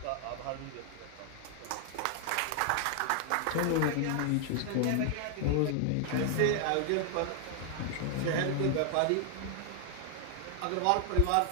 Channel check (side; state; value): both; different; correlation 0.00